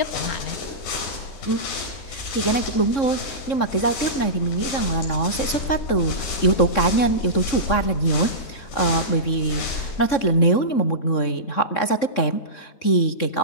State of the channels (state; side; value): late; right; 3.6 ms